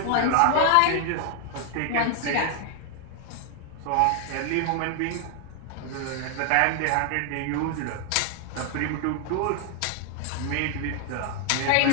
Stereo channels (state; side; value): different; both; correlation 0.00